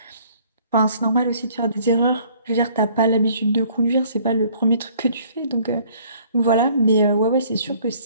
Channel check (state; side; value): inverted; both; correlation -0.58